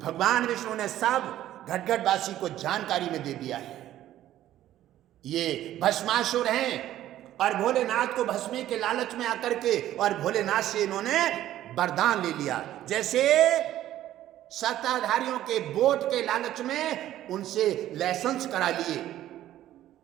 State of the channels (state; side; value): quieter; left; 13.1 dB